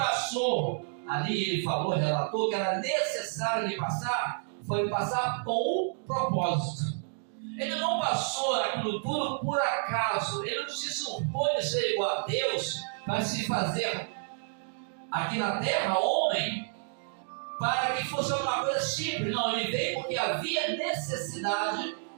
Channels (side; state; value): left; silent; digital silence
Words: ali, ele falou, relatou que era necessário ele passar, foi passar com um propósito. Ele não passou aquilo tudo por acaso. Ele não se supõe ser igual a Deus para se fazer aqui na terra homem, para que fosse uma coisa simples. Não, ele veio porque havia necessidade